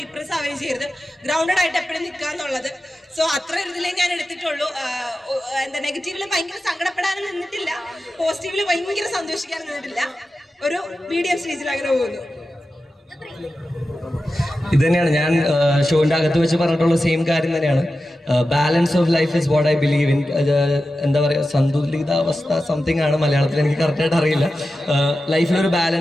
ഡിപ്രസ് ആവുകയും ചെയ്യരുത്, ഗ്രൗണ്ടഡ് ആയിട്ട് എപ്പോഴും നിൽക്കുക എന്നുള്ളത്. സോ അത്ര ഒരു ഇതിലേ ഞാൻ എടുത്തിട്ടുള്ളൂ. എന്താ നെഗറ്റീവില് ഭയങ്കര സങ്കടപ്പെടാനും നിന്നിട്ടില്ല, പോസിറ്റീവില് ഭയങ്കര സന്തോഷിക്കാനും നിന്നിട്ടില്ല. ഒരു മീഡിയം സ്റ്റേജിൽ അങ്ങനെ പോകുന്നു. ഇത് തന്നെയാണ് ഞാൻ ഷോന്റെ അകത്ത് വെച്ച് പറഞ്ഞിട്ടുള്ള സെയിം കാര്യം തന്നെയാണ്. Balance of life is what I believe in. എന്താ പറയുക, സന്തുലിതാവസ്ഥ സംതിങ് ആണ് മലയാളത്തിൽ, എനിക്ക് കറക്റ്റായിട്ട് അറിയില്ല. ലൈഫിൽ ഒരു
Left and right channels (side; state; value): both; normal; correlation 0.92